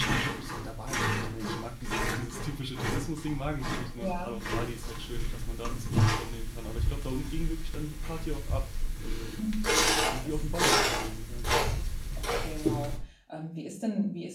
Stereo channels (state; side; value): identical; both; correlation 1.00